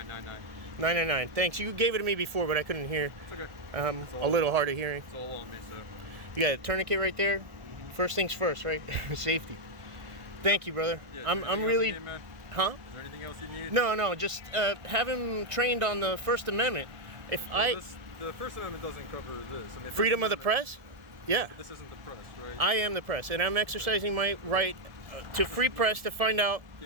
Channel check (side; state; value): left; late; 1.4 ms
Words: 999. Thanks. You gave it to me before, but I couldn't hear. It's okay. A little hard of hearing. It's all on me, so. You got a tourniquet right there. First things first, right? Safety. Thank you, brother. Yeah, I'm anything else really. you need, man? Huh? Is there anything else you need? No. Just have him trained on the First Amendment. The First Amendment doesn't cover this. I mean, Freedom of the press. Yeah. This isn't the press, right? I am the press, and I'm exercising my right to free press to find out